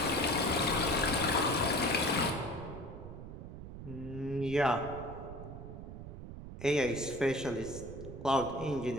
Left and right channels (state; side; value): noise; right; rumble, 11 dB below the sound